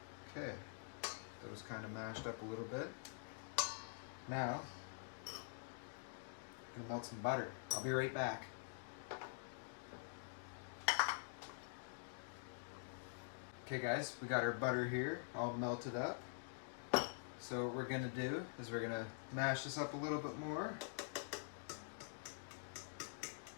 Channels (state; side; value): silent; right; digital silence